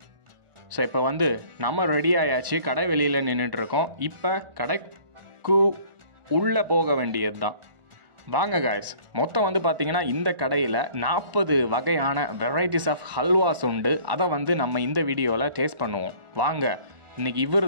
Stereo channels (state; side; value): late; left; 1.4 ms